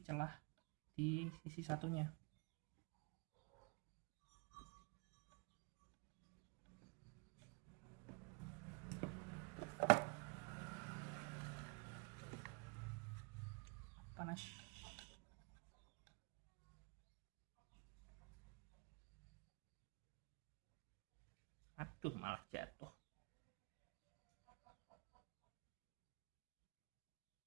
celah di sisi satunya. Panas. Aduh, malah jatuh.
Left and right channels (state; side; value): quieter; left; 32.2 dB